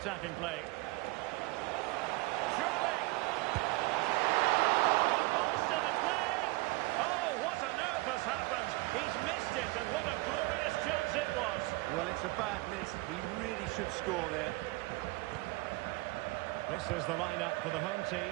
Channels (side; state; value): left; quieter; 22.8 dB